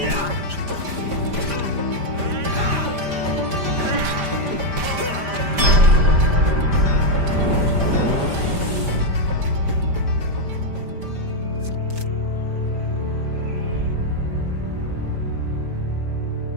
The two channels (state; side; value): late; left; 5.0 ms